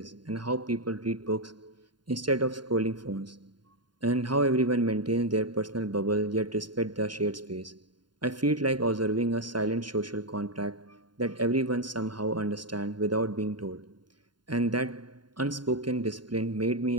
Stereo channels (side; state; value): left; late; 0.71 ms